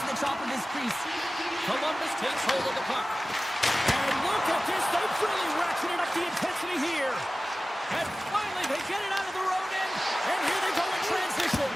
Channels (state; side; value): normal; both; correlation 0.96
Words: to the top of his crease. Columbus takes hold of the puck. And look at this. They've really ratcheted up the intensity here. And finally, they get it out of the road end. And here they go in transition.